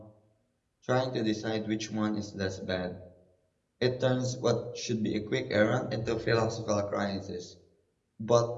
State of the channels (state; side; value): identical; both; correlation 1.00